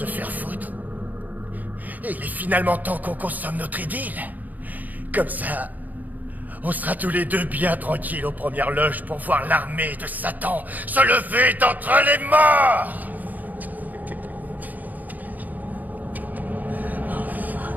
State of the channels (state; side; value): late; left; 0.081 ms